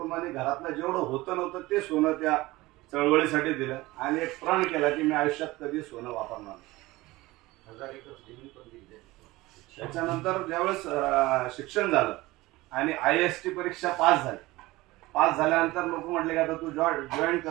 घरातलं जेवढं होतं नव्हतं ते सोनं त्या चळवळीसाठी दिलं. आणि एक प्रण केला की मी आयुष्यात कधी सोनं वापरणार नाही. त्याच्यानंतर ज्यावेळेस शिक्षण झालं आणि IAST परीक्षा पास झाल्यानंतर लोक म्हटले की आता तू जॉईन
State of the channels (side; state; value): left; quieter; 19.7 dB